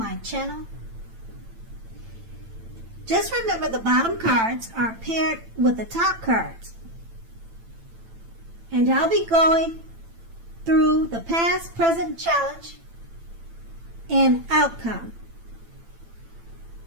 channel. Just remember the bottom cards are paired with the top cards. And I'll be going through the past, present, challenge, and outcome.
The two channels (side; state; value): left; late; 8.9 ms